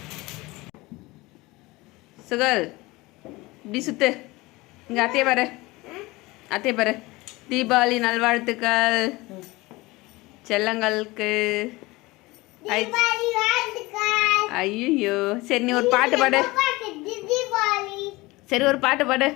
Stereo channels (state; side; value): quieter; right; 21.6 dB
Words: சுகல் இப்படி சுத்து. இங்க அத்தைய பாரு, அத்தைய பாரு. தீபாவளி நல்வாழ்த்துக்கள் செல்லங்களுக்கு. ஐயோ சரி, நீ ஒரு பாட்டு பாடு. சரி ஒரு பாட்டு பாடு.